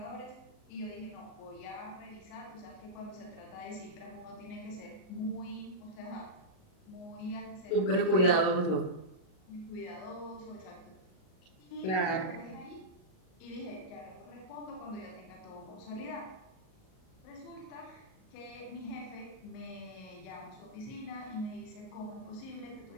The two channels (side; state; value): right; late; 38 ms